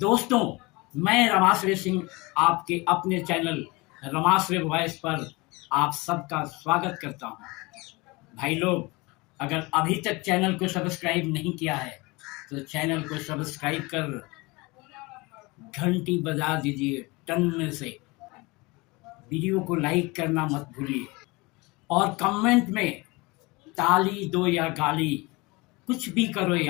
मैं रमाश्रय सिंह आपके अपने चैनल रमाश्रय वॉइस पर आप सबका स्वागत करता हूं। भाई लोग, अगर अभी तक चैनल को सब्सक्राइब नहीं किया है तो चैनल को सब्सक्राइब कर घंटी बजा दीजिए टन से। वीडियो को लाइक करना मत भूलिए और कमेंट में ताली दो या गाली, कुछ भी करो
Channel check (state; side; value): quieter; right; 24.5 dB